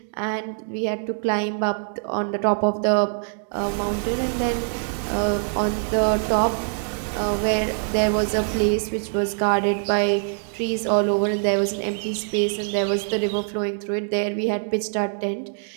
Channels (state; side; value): silent; left; digital silence